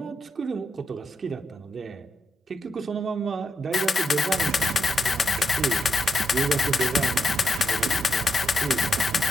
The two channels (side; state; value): both; normal; correlation 0.83